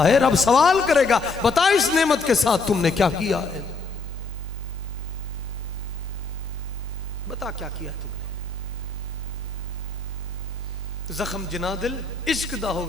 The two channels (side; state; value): right; quieter; 3.7 dB